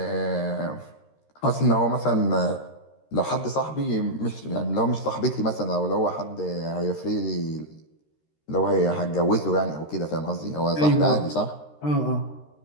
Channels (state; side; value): late; right; 13 ms